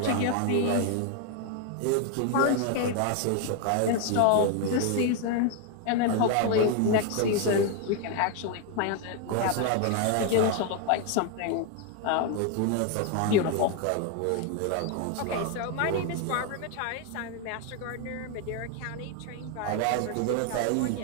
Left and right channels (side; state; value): both; different; correlation 0.01